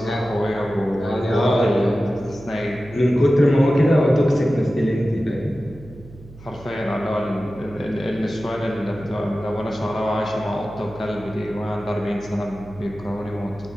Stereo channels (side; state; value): right; noise; hum, 19 dB below the sound